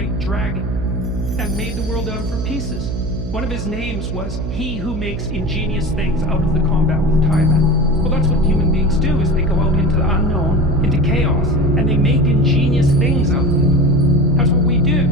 dragon, and made the world out of her pieces. One of his names was he who makes ingenious things out of the combat with Tiamat. Well, that's what human beings do, is they go out into the unknown, into chaos, and they make ingenious things out of it. That's what we do.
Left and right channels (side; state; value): right; noise; hum, 6 dB below the sound